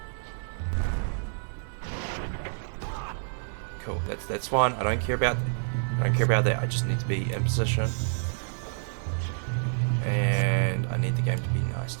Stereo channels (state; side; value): silent; left; digital silence